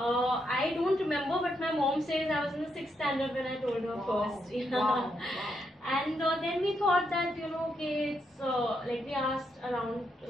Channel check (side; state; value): both; normal; correlation 0.79